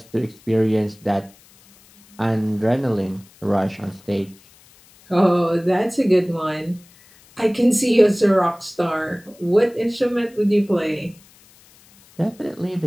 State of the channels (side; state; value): left; noise; hiss, 27 dB below the sound